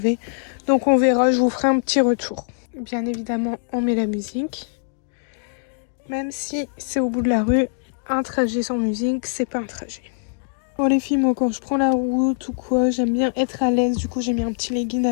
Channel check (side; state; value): right; silent; digital silence